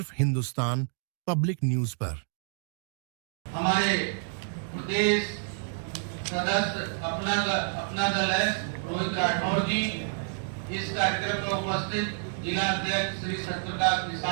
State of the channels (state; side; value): silent; left; digital silence